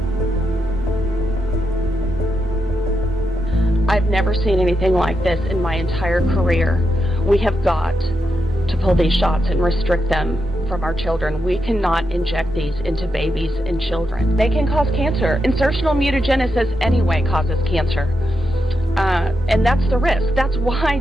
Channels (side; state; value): both; normal; correlation 0.85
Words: I've never seen anything like this in my entire career. We have got to pull these shots and restrict them from our children. We cannot inject these into babies and children. They can cause cancer. Insertional mutagenesis anyway causes cancer. And that's the risk. That's why